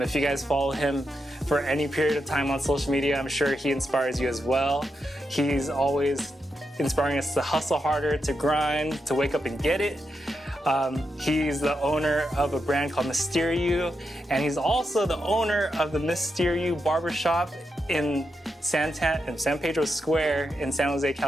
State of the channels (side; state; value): both; normal; correlation 0.85